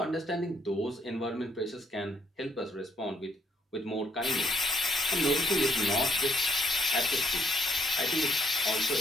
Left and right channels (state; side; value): normal; both; correlation 0.70